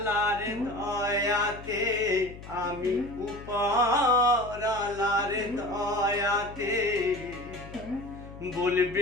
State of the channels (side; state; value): left; noise; hum, 15 dB below the sound